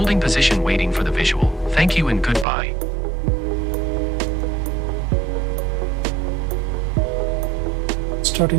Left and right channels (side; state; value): left; drops out; at 2.5 s